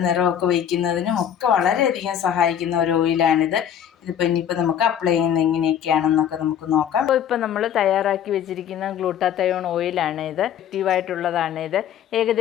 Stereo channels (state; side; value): quieter; right; 9.4 dB